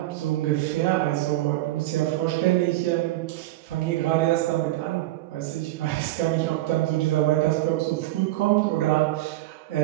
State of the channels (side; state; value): left; quieter; 16.9 dB